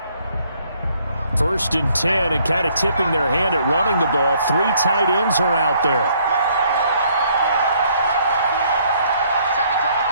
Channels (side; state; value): both; inverted; correlation -0.65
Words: First and 10, and kind of tipping their hand at running the ball. 3 tight ends are out there.